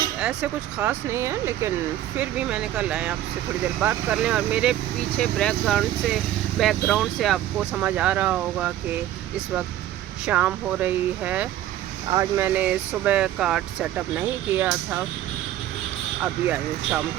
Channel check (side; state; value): left; quieter; 12.9 dB